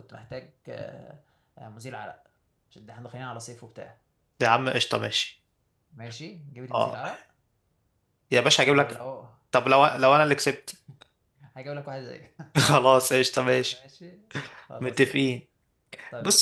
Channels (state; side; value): identical; both; correlation 1.00